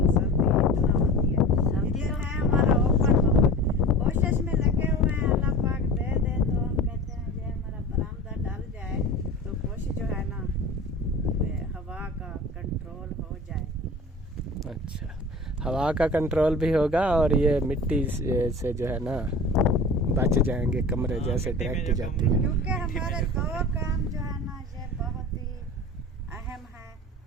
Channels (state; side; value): normal; both; correlation 0.36